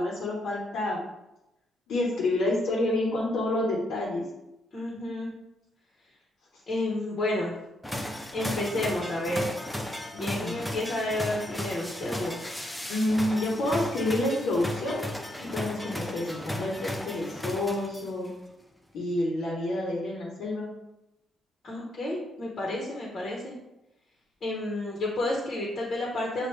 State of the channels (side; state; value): both; normal; correlation 0.76